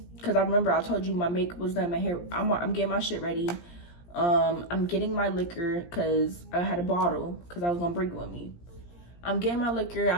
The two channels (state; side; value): late; right; 17 ms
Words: Because I remember I told you my makeup was done, my hair. I'm getting my shit ready. I'm getting my liquor because I had a bottle because I was going to bring it with me. I'm getting my liquor.